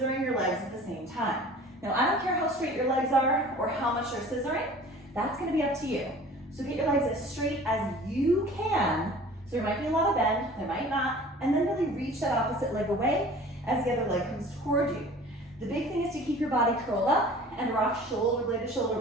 your legs at the same time. Now, I don't care how straight your legs are or how much you're scissoring. That's going to be up to you. So get your legs as straight as you can. So there might be a lot of bend, there might not, and then really reach that opposite leg away as the other leg comes toward you. The big thing is to keep your body curled up and rock shoulder blade to shoulder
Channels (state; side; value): normal; both; correlation 0.45